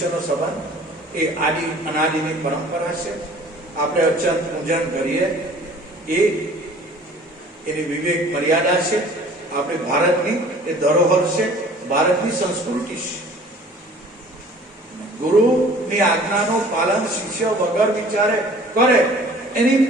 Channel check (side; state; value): both; normal; correlation 0.49